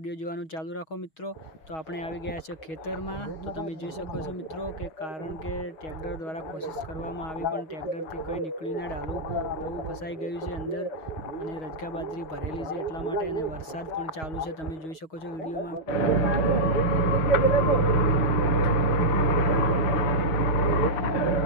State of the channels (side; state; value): right; late; 6.3 ms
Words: जोवानुं चालू राखो मित्रों। तो आपणे आवी गया छे खेतर में। तो तमे जोई शको छो मित्रों के कारण के ट्रेक्टर द्वारा कोशिश करवामां आवी पण ट्रेक्टर थी कई निकळ्युं ना, डालू बहु फसाई गयुं छे अंदर अने रजगा बाजरी भरेली छे એટલા માટે અને વરસાદ પણ ચાલુ છે, તમે જોઈ શકો છો વિડીયોમાં।